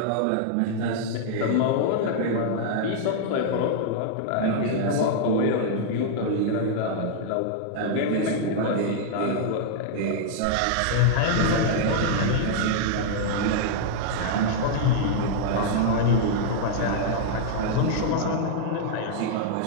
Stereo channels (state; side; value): different; both; correlation -0.01